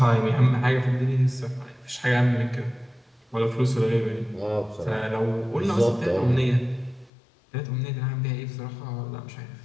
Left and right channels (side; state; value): right; drops out; at 7.1 s